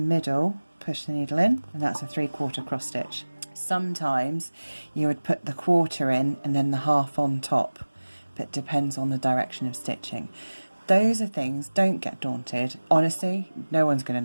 push the needle in, and that's a 3/4 cross stitch. Sometimes you would put the quarter in and then the half on top, but it depends on the direction of stitching. Those are things, don't get daunted. Honestly, no one's going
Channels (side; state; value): both; inverted; correlation -1.00